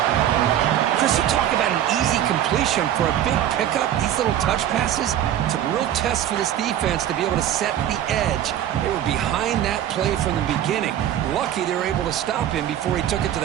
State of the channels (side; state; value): left; quieter; 11.2 dB